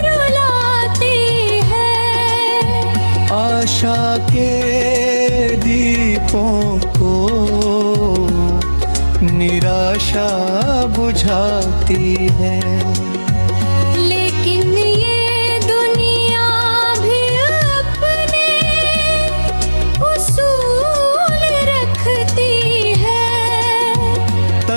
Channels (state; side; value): inverted; both; correlation -1.00